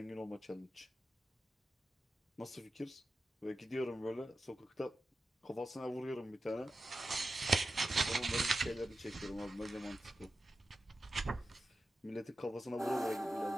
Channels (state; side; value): normal; both; correlation 0.92